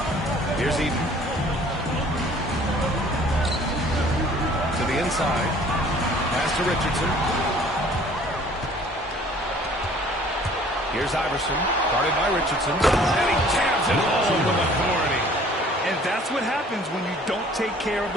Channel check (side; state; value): both; normal; correlation 0.54